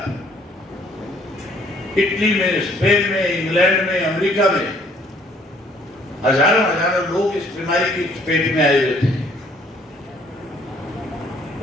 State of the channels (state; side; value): normal; both; correlation 0.61